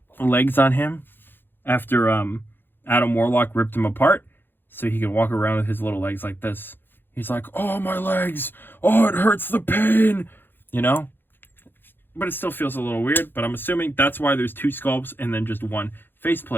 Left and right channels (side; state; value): right; late; 0.099 ms